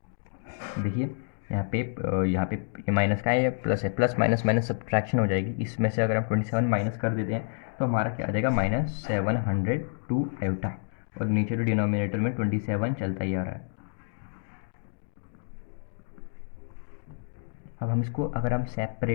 देखिए यहाँ पे ये माइनस का है, ये प्लस है, प्लस माइनस माइनस सब्ट्रैक्शन हो जाएगी, इसमें से अगर हम 27 माइनस कर देते हैं तो हमारा क्या आ जाएगा -702 आयोटा, और नीचे तो डिनोमिनेटर में 27 चलता ही आ रहा है। अब हम इसको अगर हम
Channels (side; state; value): right; silent; digital silence